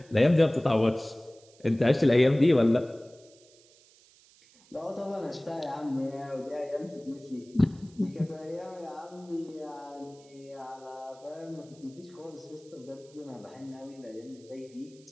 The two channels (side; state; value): right; noise; hiss, 27 dB below the sound